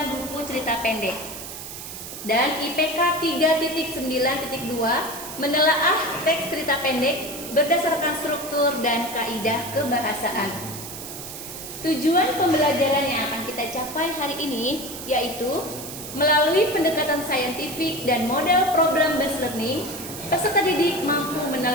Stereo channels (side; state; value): right; noise; hiss, 10 dB below the sound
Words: buku cerita pendek. Dan IPK 3.9.2 menelaah teks cerita pendek berdasarkan struktur dan kaidah kebahasaan. Tujuan pembelajaran yang akan kita capai hari ini yaitu melalui pendekatan saintifik dan model problem based learning, peserta didik mampu